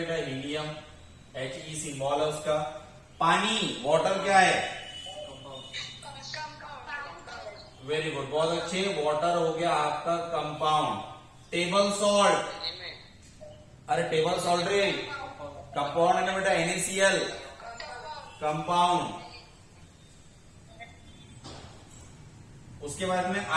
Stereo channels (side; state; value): both; identical; correlation 1.00